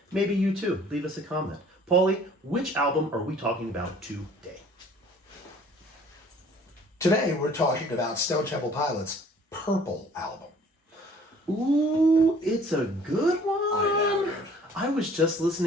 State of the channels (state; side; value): normal; both; correlation 0.54